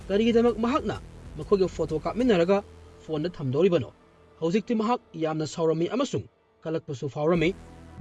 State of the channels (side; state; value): both; identical; correlation 1.00